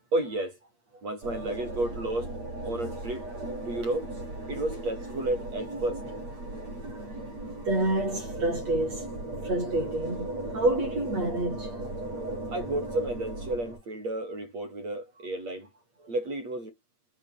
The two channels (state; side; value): late; left; 8.5 ms